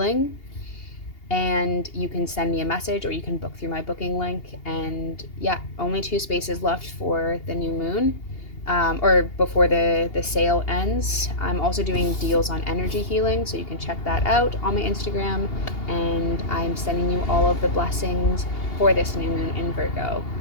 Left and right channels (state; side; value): late; right; 2.8 ms